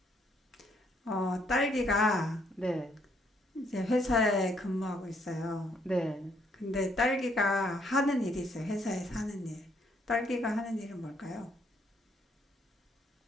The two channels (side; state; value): both; normal; correlation 0.70